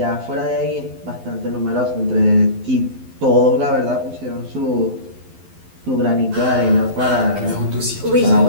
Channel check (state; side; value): late; left; 12 ms